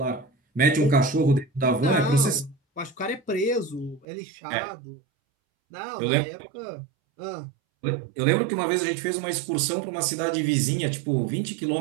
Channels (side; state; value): left; drops out; at 4.0 s